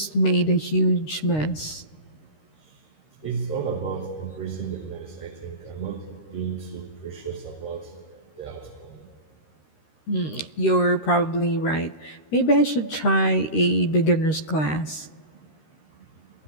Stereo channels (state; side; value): late; right; 13 ms